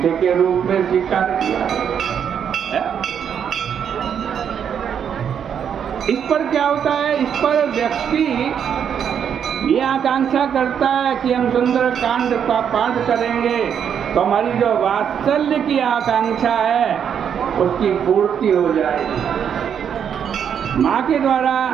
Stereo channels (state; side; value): quieter; left; 8.1 dB